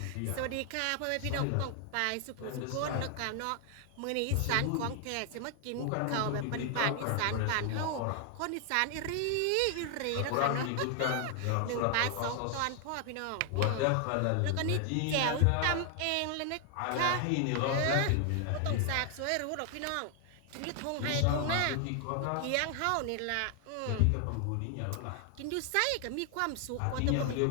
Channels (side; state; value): both; different; correlation 0.00